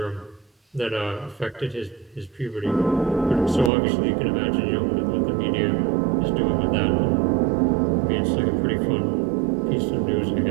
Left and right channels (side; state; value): left; drops out; at 3.7 s